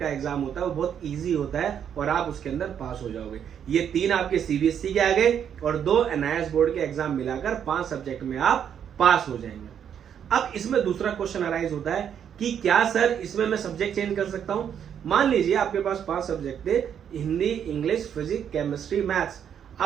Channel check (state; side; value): quieter; left; 8.6 dB